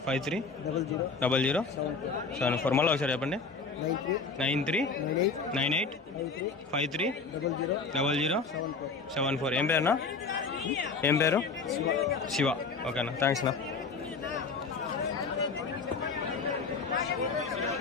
మళ్ళీ ఒకసారి చెప్పండి. 9398530074. ఏం పేరునా? ఏం పేరు? శివ. ఓకేనా, థ్యాంక్స్ నా.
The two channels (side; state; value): right; quieter; 4.6 dB